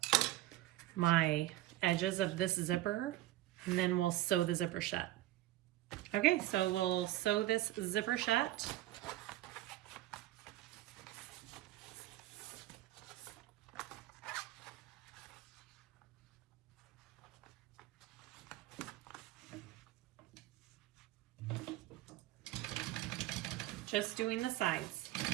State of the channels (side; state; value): left; quieter; 15.7 dB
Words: my edges of this zipper, and then we'll sew the zipper shut. Okay, so we'll sew this zipper shut. Just doing the sides.